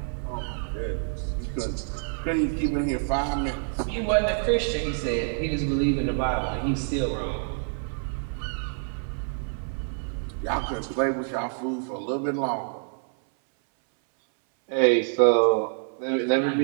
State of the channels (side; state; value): left; silent; 60 dB below the other